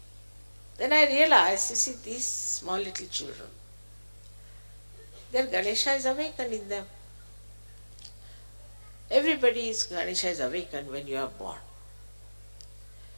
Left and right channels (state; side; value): inverted; both; correlation -1.00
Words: Then I realized, you see, these small little children, their Ganesha is awakened in them. Everybody's Ganesha is awakened when you are born.